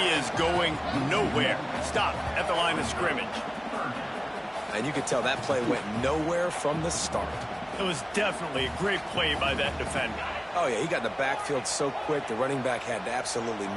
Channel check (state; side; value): identical; both; correlation 1.00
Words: is going nowhere. Stop at the line of scrimmage. And you can tell that play went nowhere from the start. It was definitely a great play by that defender. Oh, yeah, he got in the backfield so quick, the running back had absolutely